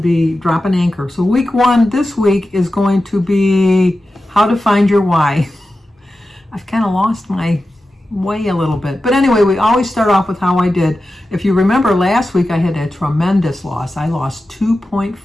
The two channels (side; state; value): both; normal; correlation 0.93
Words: be drop and anchor. So week one this week is going to be how to find your why. I've kind of lost my way a little bit. But anyway, we always start off with how I did. If you remember last week, I had a tremendous loss. I lost